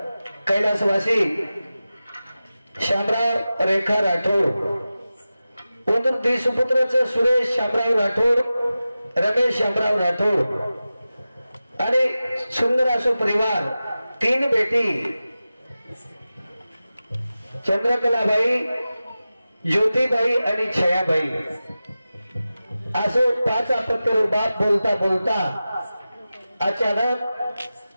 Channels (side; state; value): both; inverted; correlation -0.94